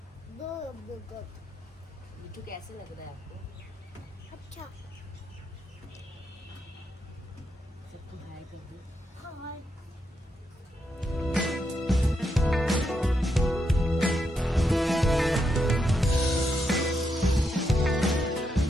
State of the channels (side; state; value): both; normal; correlation 0.82